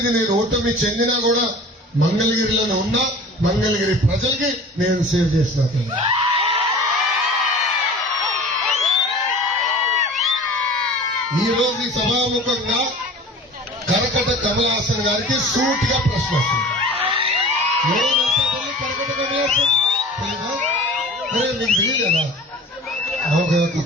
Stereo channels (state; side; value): normal; both; correlation 0.41